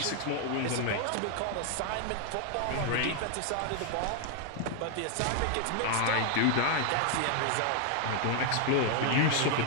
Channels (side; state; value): both; different; correlation 0.00